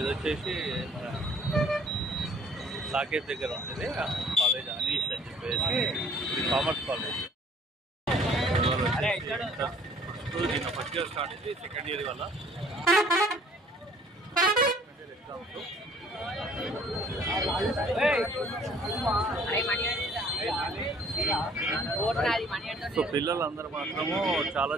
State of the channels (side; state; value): both; normal; correlation 0.56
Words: వచ్చేసి మన సాకేత్ దగ్గర ఉంటుంది కాలేజ్ అనీష్ అని చెప్పేసి ఇది కామర్స్ కాలేజ్. దీన్ని ఫస్ట్ ఇయర్ స్టార్ట్ అయింది, సెకండ్ ఇయర్ వల్ల ఎగ్జామ్స్. సో పిల్లలందరూ మాత్రము చాలా